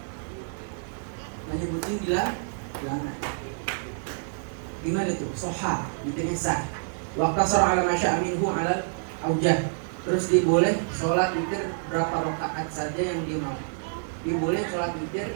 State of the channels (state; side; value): silent; left; digital silence